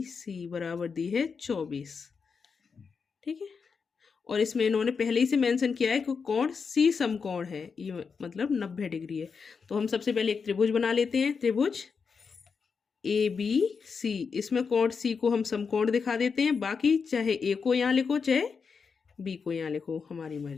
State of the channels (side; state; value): right; quieter; 5.6 dB